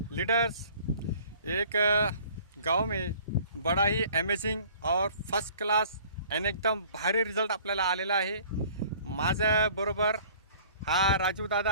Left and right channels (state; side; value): inverted; both; correlation -0.51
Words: leaders. एक गांव में बड़ा ही अमेजिंग और फर्स्ट क्लास आणि एकदम भारी रिझल्ट आपल्याला आलेला आहे। माझ्या बरोबर हा राजू